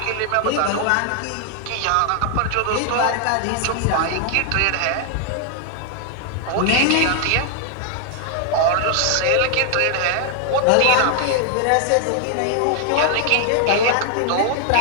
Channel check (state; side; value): different; both; correlation 0.00